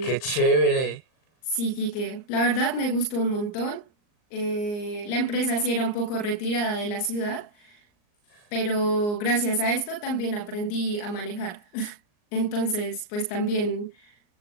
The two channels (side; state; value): right; late; 39 ms